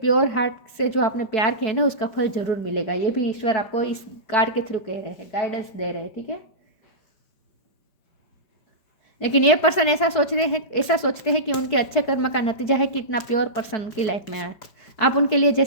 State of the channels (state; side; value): late; right; 4.6 ms